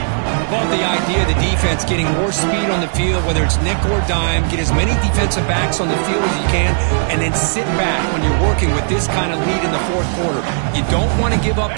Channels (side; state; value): left; silent; digital silence